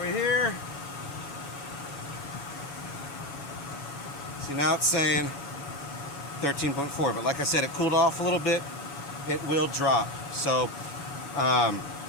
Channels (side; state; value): right; late; 7.1 ms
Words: here. See, now it's saying 13.4, but like I said, it cooled off a little bit. It will drop. So,